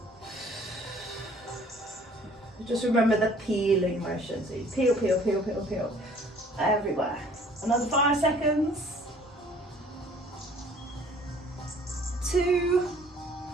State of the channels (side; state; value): both; normal; correlation 0.55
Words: Just remember the peeling motion. So you peel, peel, peel, peel, peel. Everywhere. Another 5 seconds. 2,